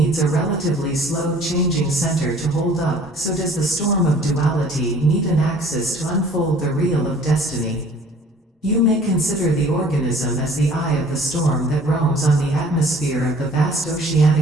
a relatively slow changing center to hold up, so does the storm of duality need an axis to unfold the reel of destiny. You may consider the organism as the eye of the storm that roams on the atmosphere of the vast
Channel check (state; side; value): normal; both; correlation 0.52